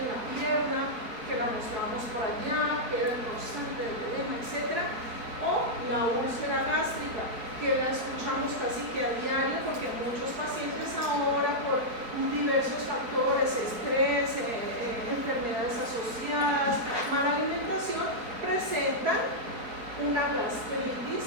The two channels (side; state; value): left; late; 4.4 ms